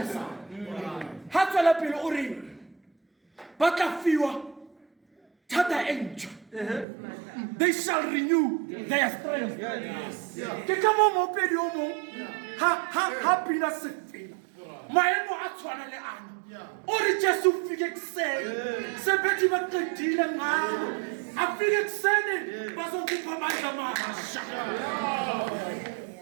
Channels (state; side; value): drops out; left; at 6.9 s